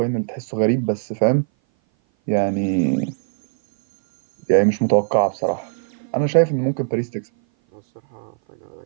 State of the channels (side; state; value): left; silent; 58 dB below the other